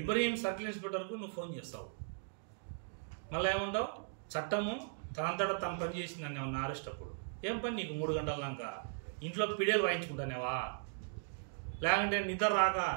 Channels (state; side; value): silent; left; digital silence